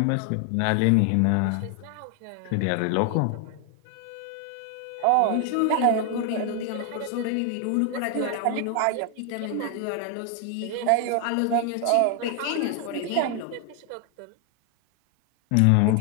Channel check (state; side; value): different; both; correlation 0.00